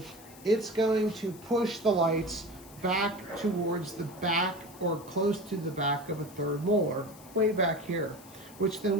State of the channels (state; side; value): noise; left; hiss, 21 dB below the sound